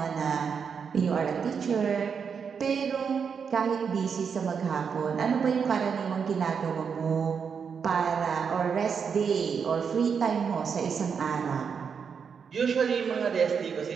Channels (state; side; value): quieter; left; 6.4 dB